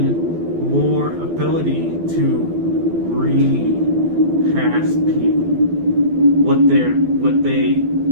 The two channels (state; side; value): late; left; 12 ms